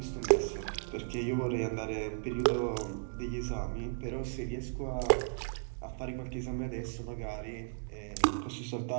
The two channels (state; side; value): silent; left; digital silence